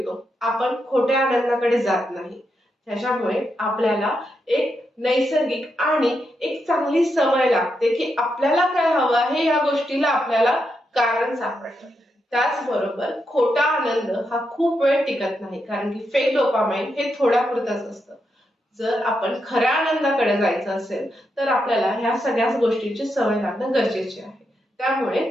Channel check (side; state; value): both; normal; correlation 0.83